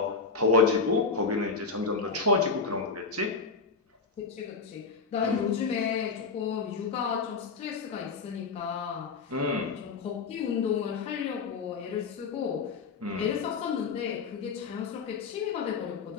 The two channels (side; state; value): right; quieter; 4.9 dB